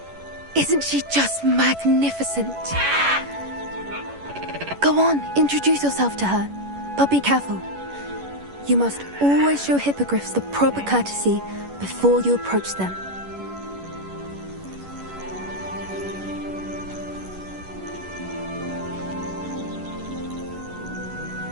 Isn't she just magnificent? Go on, introduce yourself to her. But be careful. You must always show hippogriffs the proper courtesy before you approach them.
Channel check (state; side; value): late; left; 11 ms